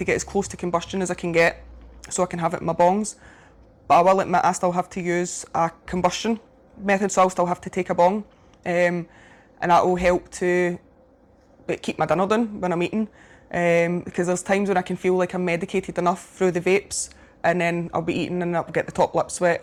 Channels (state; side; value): identical; both; correlation 1.00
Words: get as close to combustion as I can get, so I can have it in my bongs. But I will admit I still have to use a combustion method, so I'll still have to take a bong. And that will help to keep my dinner done when I'm eating. Because there's times when I can feel like I'm medicated enough through the vapes, and then I'll be eating and I'll get the top lip sweat,